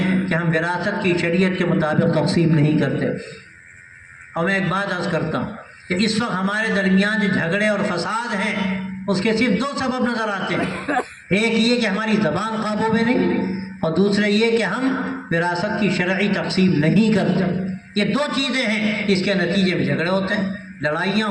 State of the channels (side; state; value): both; identical; correlation 1.00